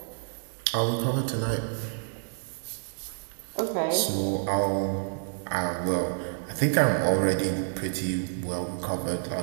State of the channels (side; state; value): left; silent; digital silence